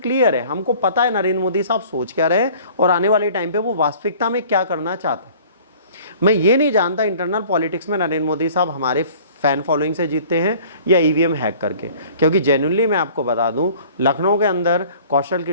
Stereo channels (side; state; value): both; inverted; correlation -0.50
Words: है, हमको पता है नरेंद्र मोदी साहब सोच क्या रहे हैं और आने वाले टाइम पे वो वास्तविकता में क्या करना चाहते हैं। मैं ये नहीं जानता इंटरनल पॉलिटिक्स में नरेंद्र मोदी साहब हमारे फैन फॉलोइंग से जीतते हैं या EVM हैक करके, क्योंकि जेन्युइनली मैं आपको बता दूं लखनऊ के अंदर कौशल